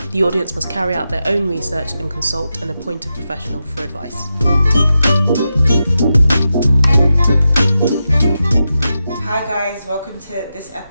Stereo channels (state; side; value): inverted; both; correlation -0.89